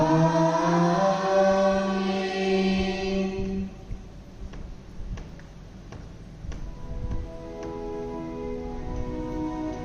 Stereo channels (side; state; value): both; identical; correlation 1.00